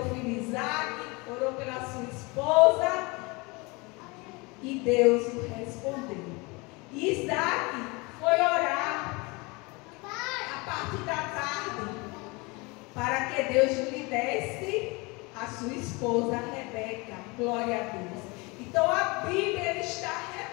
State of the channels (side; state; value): right; quieter; 26.4 dB